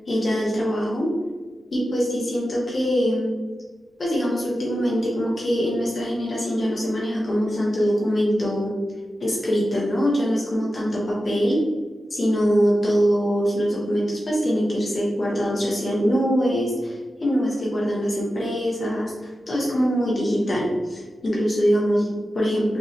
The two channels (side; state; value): both; normal; correlation 0.92